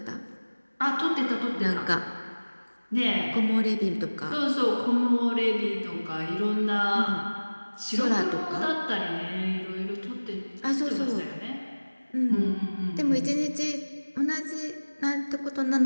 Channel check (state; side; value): inverted; both; correlation -1.00